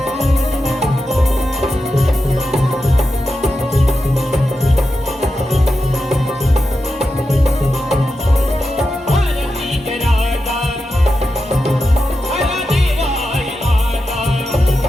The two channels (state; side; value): normal; both; correlation 0.89